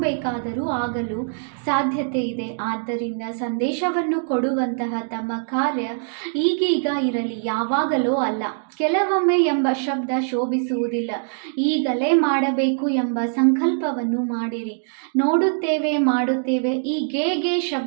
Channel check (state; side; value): silent; left; digital silence